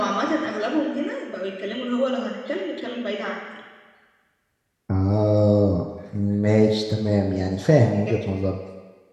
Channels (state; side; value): identical; both; correlation 1.00